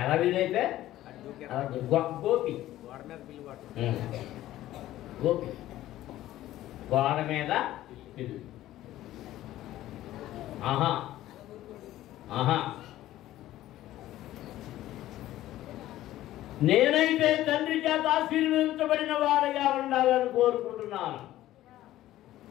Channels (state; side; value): quieter; right; 14.5 dB